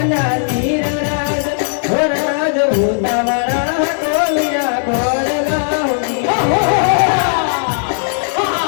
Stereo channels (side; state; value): right; silent; 69 dB below the other